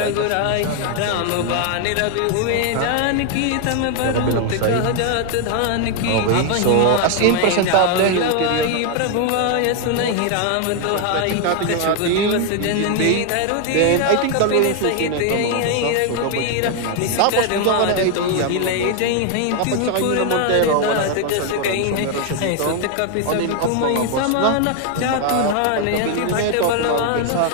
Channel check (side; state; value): both; different; correlation 0.00